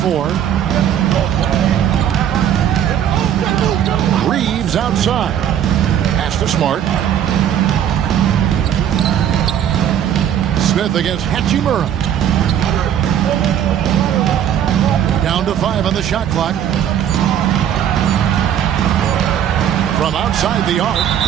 Reeves outside. Pass to Smart. Smith against Hachimura. Down to 5 on the shot clock. From outside the arc,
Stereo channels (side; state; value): left; quieter; 9.8 dB